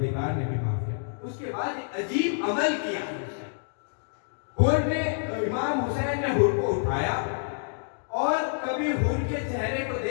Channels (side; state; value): right; silent; digital silence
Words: نے بھی معاف کیا۔ اس کے بعد ایک عجیب عمل کیا حر نے، امام حسین نے حر کو اٹھایا اور کبھی حر کے چہرے کو